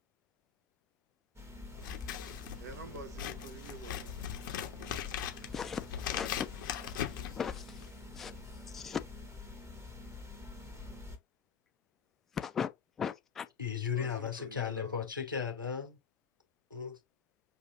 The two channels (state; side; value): quieter; right; 6.9 dB